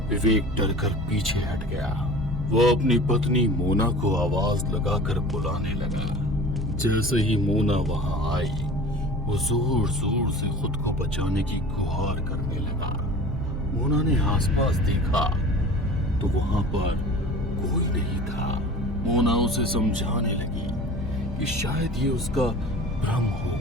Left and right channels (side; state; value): both; normal; correlation 0.39